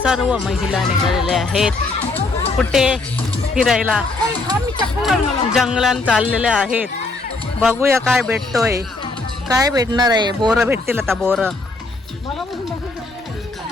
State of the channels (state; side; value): quieter; right; 3.4 dB